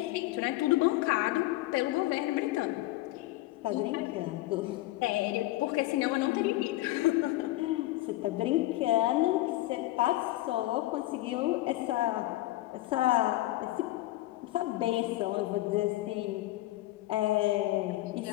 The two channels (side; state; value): right; quieter; 17.3 dB